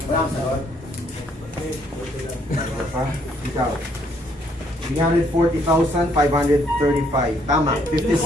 Walang sagot. Ikaw. 340,535. Tama, 50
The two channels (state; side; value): normal; both; correlation 0.68